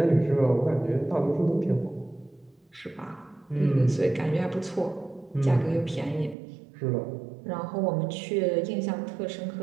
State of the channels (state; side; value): drops out; left; at 6.4 s